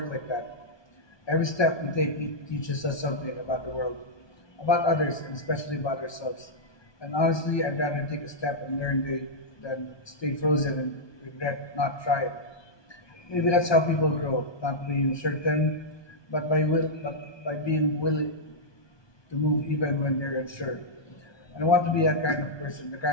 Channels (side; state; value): right; late; 1.2 ms